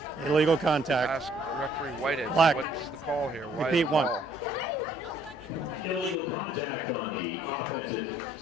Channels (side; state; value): both; normal; correlation 0.63